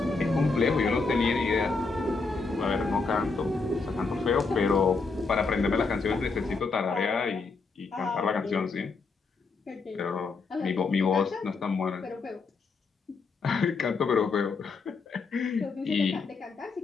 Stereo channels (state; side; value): quieter; right; 4.3 dB